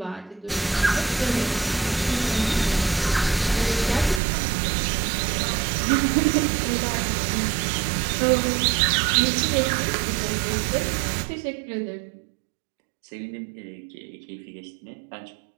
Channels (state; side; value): drops out; left; at 4.2 s